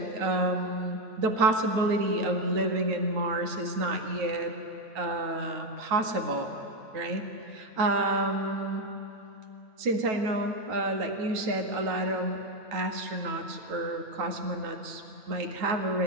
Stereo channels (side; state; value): left; late; 9.3 ms